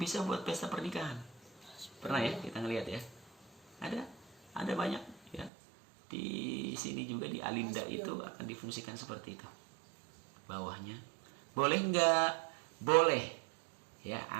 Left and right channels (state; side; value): drops out; left; at 5.5 s